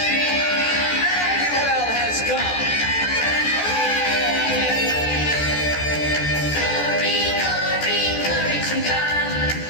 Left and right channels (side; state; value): right; late; 14 ms